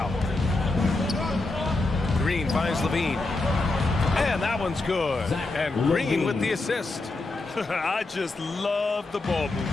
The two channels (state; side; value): quieter; right; 3.1 dB